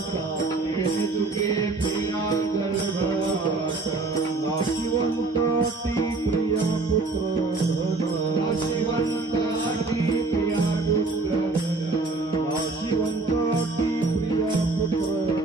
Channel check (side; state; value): left; quieter; 3.6 dB